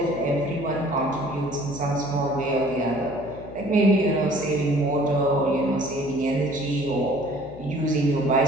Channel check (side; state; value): left; noise; hum, 14 dB below the sound